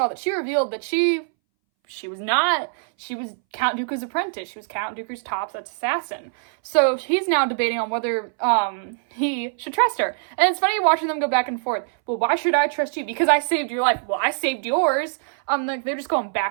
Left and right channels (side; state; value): left; silent; 62 dB below the other